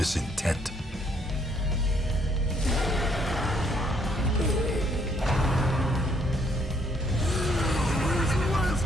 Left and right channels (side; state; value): both; normal; correlation 0.68